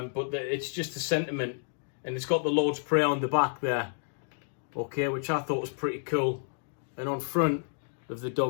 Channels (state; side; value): silent; right; 58 dB below the other